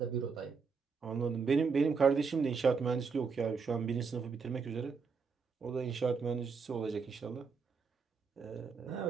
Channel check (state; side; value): quieter; left; 5.4 dB